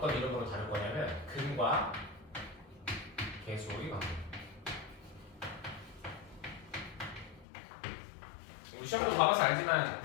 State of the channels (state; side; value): drops out; right; at 7.5 s